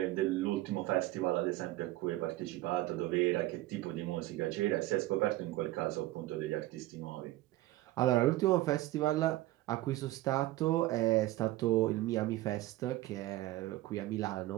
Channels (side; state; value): left; quieter; 16.9 dB